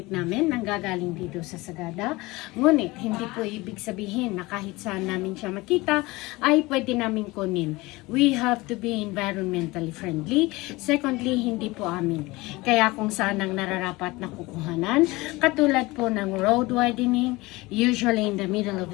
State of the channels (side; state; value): right; quieter; 21.7 dB